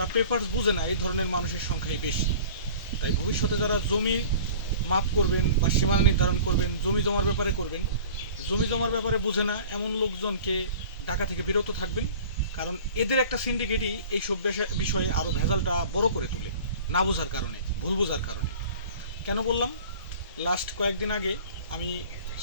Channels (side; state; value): both; inverted; correlation -0.43